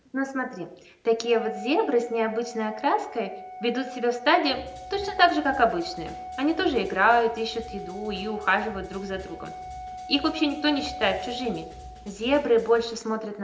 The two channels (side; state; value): both; identical; correlation 1.00